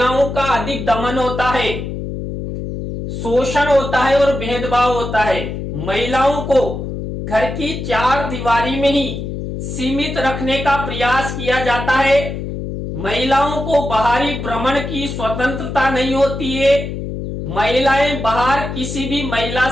का अधिक दमन होता है, शोषण होता है और भेदभाव होता है। महिलाओं को घर की चार दीवारी में ही सीमित रखने का प्रयास किया जाता है। महिलाओं को बाहरी भ्रमण की स्वतंत्रता नहीं होती है। महिलाएं बाहर किसी भी महिला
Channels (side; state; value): left; noise; hum, 6 dB below the sound